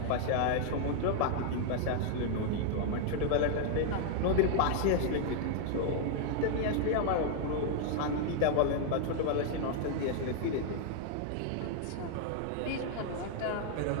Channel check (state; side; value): different; both; correlation 0.00